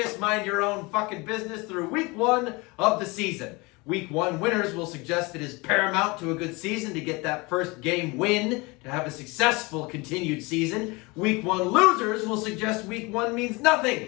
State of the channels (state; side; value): quieter; right; 25.4 dB